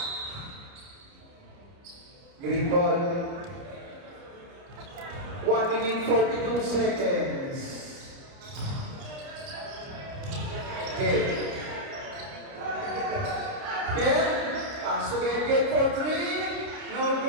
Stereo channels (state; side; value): late; left; 29 ms